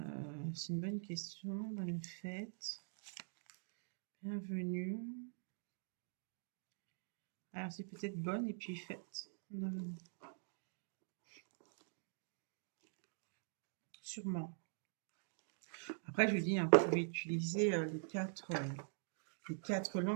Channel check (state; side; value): silent; left; digital silence